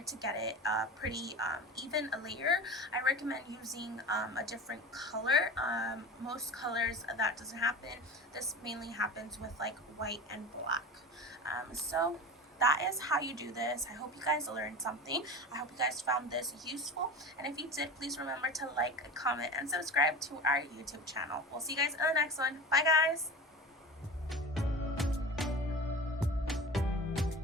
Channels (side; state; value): both; normal; correlation 0.32